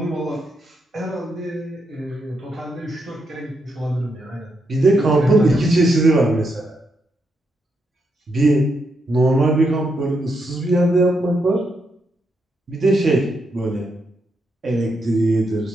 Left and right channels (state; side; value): normal; both; correlation 0.81